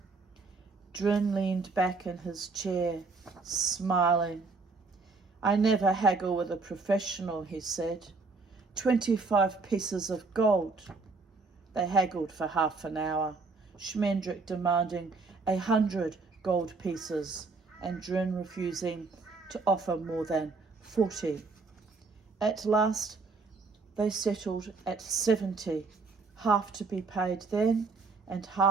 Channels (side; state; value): left; quieter; 4.0 dB